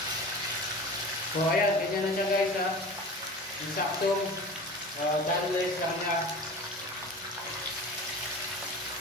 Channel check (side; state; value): both; normal; correlation 0.36